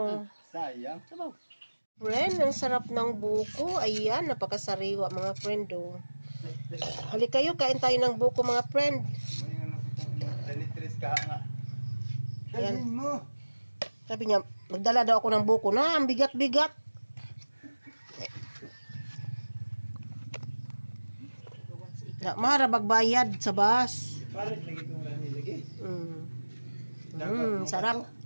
Sayang. Sabaw. Friend, ang sarap ng buko. Ayan, napakasariwa mga friend. Oh. Halik kayo, kain tayo ng buko mga friend. May ano ko itong dalitris ka nga. Ayan. Dalhin mo. Sabi niya, magdala daw ako ng buko na, ang bigat-bigat. Mara bagbayad sa bus. Parit lagi itong rani lagi. Sarap.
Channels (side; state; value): both; inverted; correlation -1.00